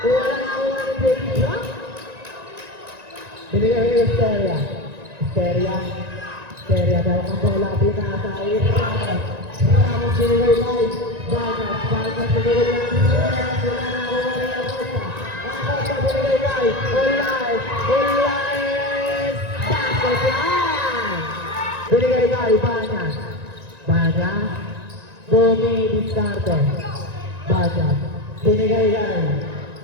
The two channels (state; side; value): late; left; 1.9 ms